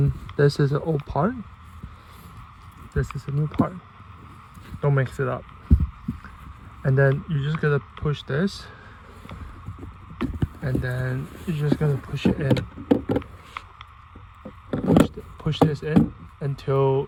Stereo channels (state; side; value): identical; both; correlation 1.00